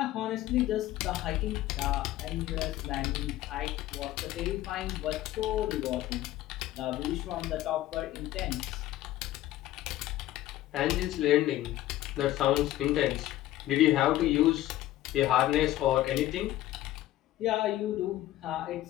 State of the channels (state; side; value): quieter; right; 14.7 dB